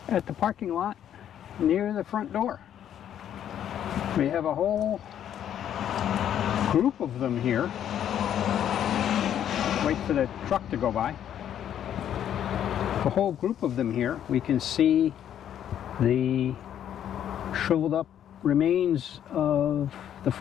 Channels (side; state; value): right; quieter; 10.1 dB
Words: at the parking lot near the front door. We have a whole group of them here. Wait for the truck to go by. A whole group of them here. We can see the shriveled up remains of the